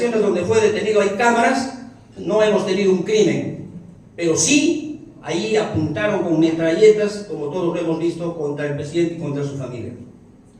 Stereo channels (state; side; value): identical; both; correlation 1.00